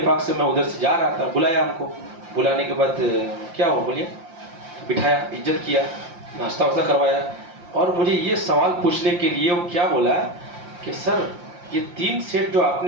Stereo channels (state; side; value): late; left; 5.7 ms